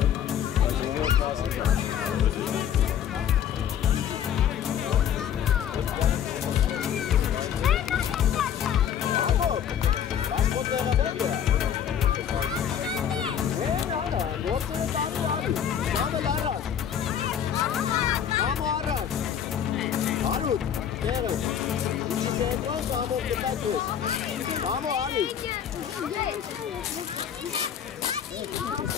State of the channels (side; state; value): right; quieter; 8.9 dB